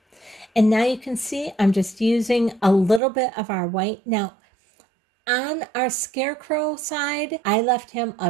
And now you can see I'm just using a little bit of our white. Now, on our scarecrow side, I left him a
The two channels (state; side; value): drops out; left; at 3.0 s